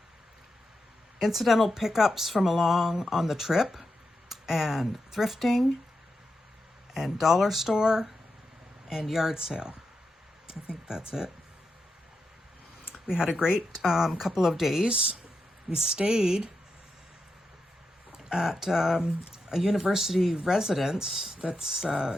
incidental pickups from along on the trip and thrifting and dollar store and yard sale. I think that's it. We had a great couple of days. We stayed at a university residence that's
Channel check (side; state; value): both; normal; correlation 0.87